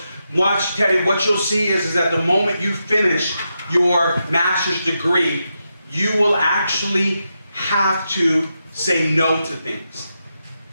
watch, Teddy, what you'll see is that the moment you finish your master's degree, you will actually have to say no to things.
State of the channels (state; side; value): inverted; both; correlation -0.86